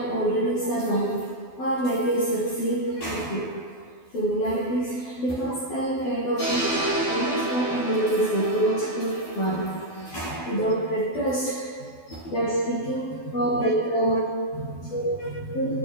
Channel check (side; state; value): right; late; 12 ms